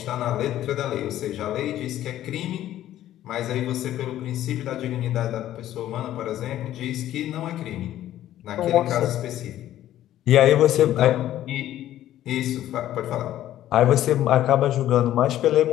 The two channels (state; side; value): quieter; right; 12.9 dB